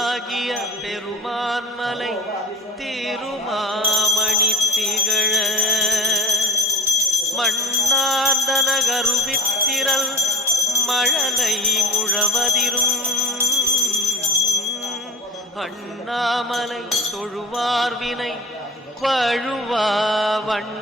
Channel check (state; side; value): normal; both; correlation 0.40